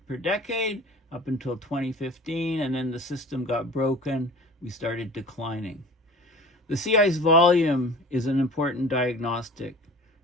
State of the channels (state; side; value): normal; both; correlation 0.42